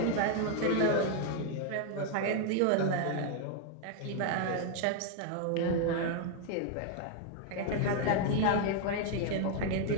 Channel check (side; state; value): both; different; correlation 0.00